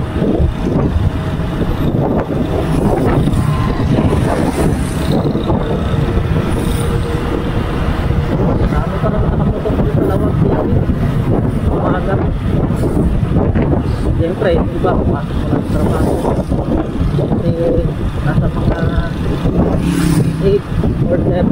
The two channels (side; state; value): both; identical; correlation 1.00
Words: Siyempre, iba pumasok mo lang sa trabaho kasi nasa mga 8 or